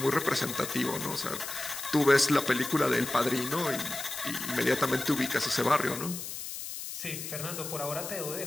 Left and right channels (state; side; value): noise; left; hiss, 8 dB below the sound